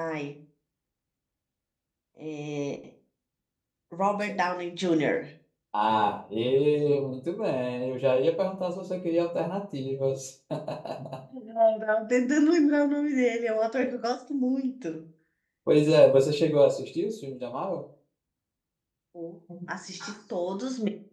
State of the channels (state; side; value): identical; both; correlation 1.00